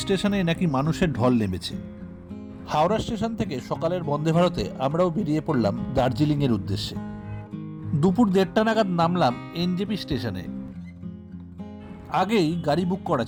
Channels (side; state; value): both; identical; correlation 1.00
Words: স্টেশনে নাকি মানুষের ঢল নেমেছে। হাওড়া স্টেশন থেকে সকালের বন্দে ভারতে আমরাও বেরিয়ে পড়লাম দার্জিলিংয়ের উদ্দেশ্যে। দুপুর 1:30 নাগাদ নামলাম এনজেপি স্টেশনে। আগেই গাড়ি বুক করা